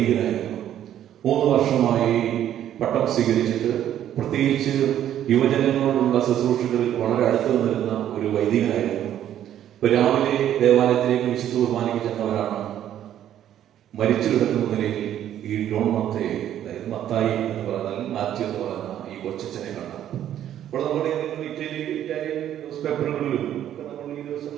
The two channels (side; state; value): left; quieter; 11.1 dB